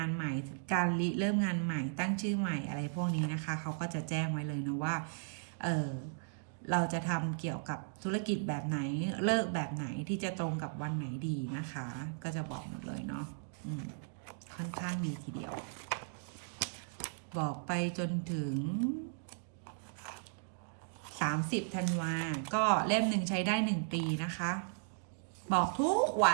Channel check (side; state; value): left; silent; digital silence